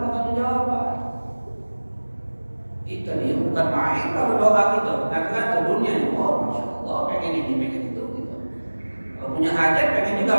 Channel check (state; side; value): inverted; both; correlation -1.00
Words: pertanggungjawaban. Itu dia bukan main kalau doa kita. Katakan dunia ini, oh masya Allah, pengen ini, pengen itu, gitu. Kalau punya hajat, pengen